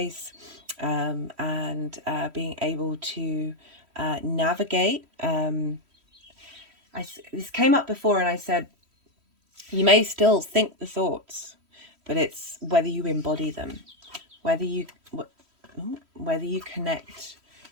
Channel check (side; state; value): left; late; 3.1 ms